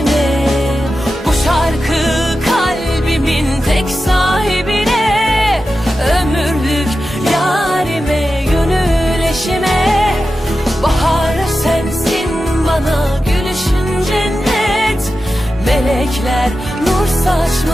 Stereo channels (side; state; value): both; normal; correlation 0.92